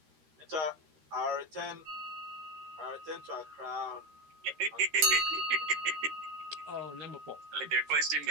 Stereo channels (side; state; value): left; late; 13 ms